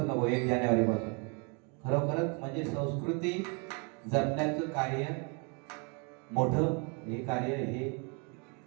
1 जानेवारी पासून खरोखरच म्हणजे संस्कृती जपण्याचं कार्य मोठं हे कार्य हे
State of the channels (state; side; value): quieter; left; 34.9 dB